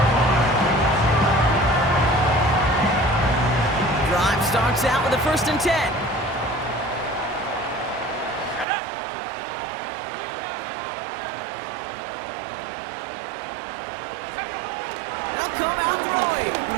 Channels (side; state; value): left; drops out; at 8.7 s